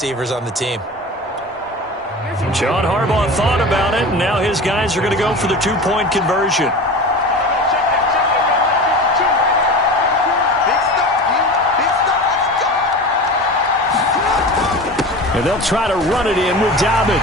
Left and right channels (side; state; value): both; normal; correlation 0.32